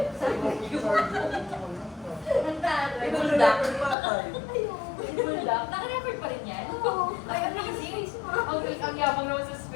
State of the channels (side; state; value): right; drops out; at 4.0 s